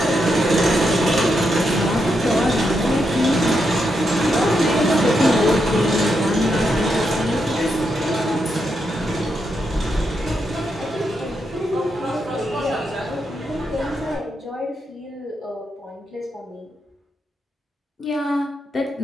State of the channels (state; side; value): normal; both; correlation 0.82